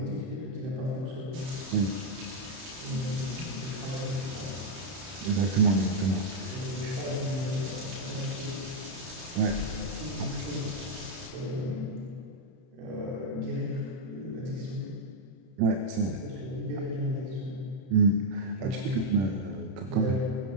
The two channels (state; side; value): late; left; 31 ms